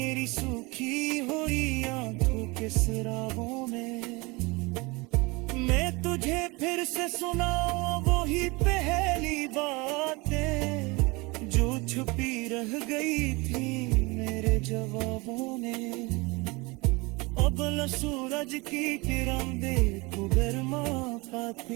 सूखी हुई आंखों के सराहों में। मैं तुझे फिर से सुनाऊं वही पहली बातें, जो छुपी रह गई थी मेरे जवाबों में। अब सूरज की किरण देखो गरमा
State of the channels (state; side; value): quieter; left; 25.3 dB